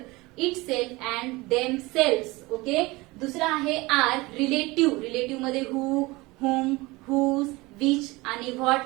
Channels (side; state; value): left; quieter; 22.4 dB